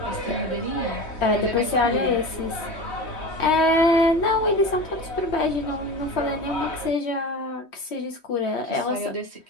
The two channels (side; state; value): right; late; 3.1 ms